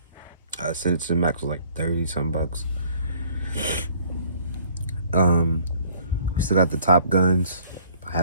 Send It to the Max was like 30 some bucks. We still got the Top Guns,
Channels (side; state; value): both; inverted; correlation -0.57